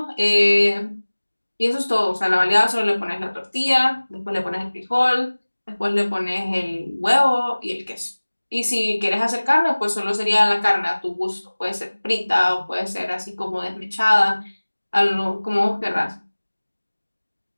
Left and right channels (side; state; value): both; inverted; correlation -1.00